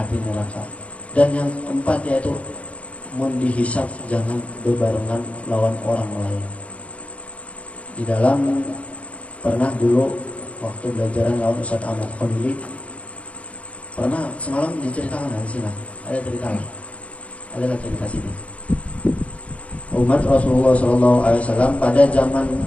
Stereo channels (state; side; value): late; right; 0.064 ms